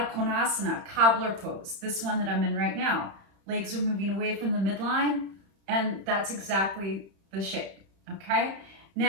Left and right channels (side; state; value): left; late; 31 ms